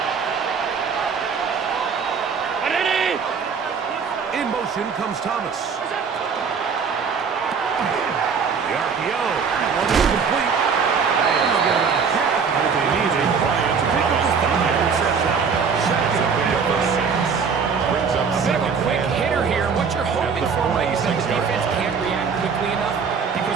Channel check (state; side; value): quieter; left; 5.9 dB